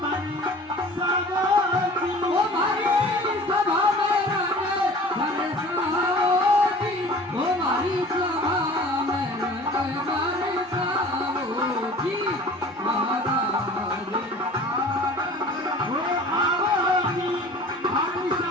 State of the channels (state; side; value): normal; both; correlation 0.44